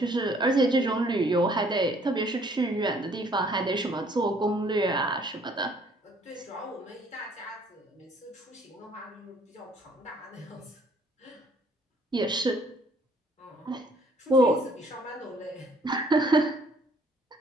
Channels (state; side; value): normal; both; correlation 0.61